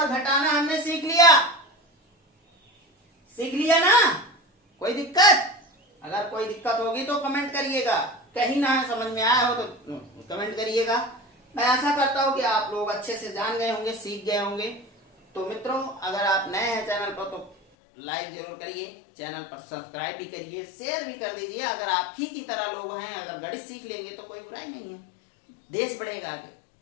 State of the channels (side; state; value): right; drops out; at 17.6 s